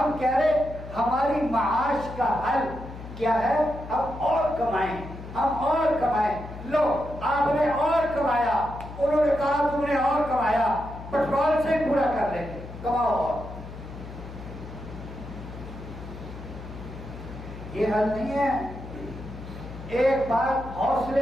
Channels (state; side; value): noise; left; hum, 12 dB below the sound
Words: کہہ رہے ہماری معاش کا حل کیا ہے, ہم اور کمائیں, ہم اور کمائیں. لو آپ نے اور کمایا, انہوں نے کہا تم نے اور کمایا, پیٹرول سے پورا کر لیں گے, کماؤ اور. یہ حل نہیں ہے. ایک بات